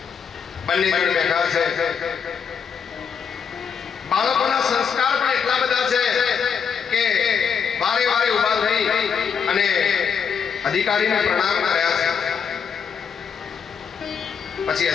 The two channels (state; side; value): quieter; right; 6.8 dB